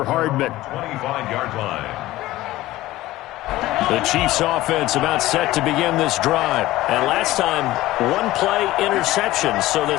Hardman. 25-yard line. The Chiefs offense about set to begin this drive. And last time, one play interception. So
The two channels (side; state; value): right; quieter; 16.7 dB